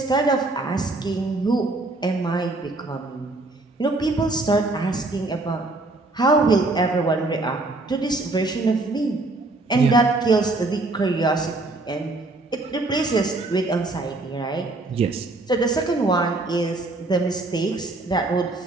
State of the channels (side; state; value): left; quieter; 3.0 dB